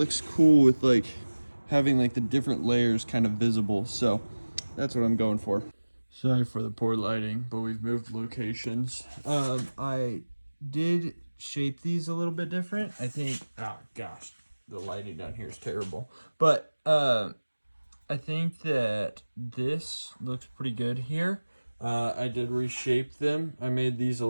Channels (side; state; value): both; inverted; correlation -1.00